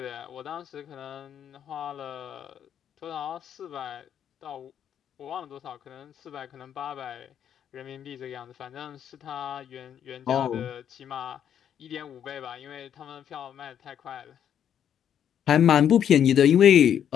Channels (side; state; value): right; quieter; 9.2 dB